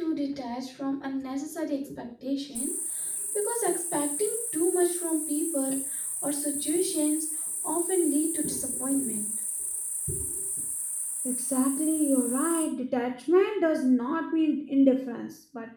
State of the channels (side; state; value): both; identical; correlation 1.00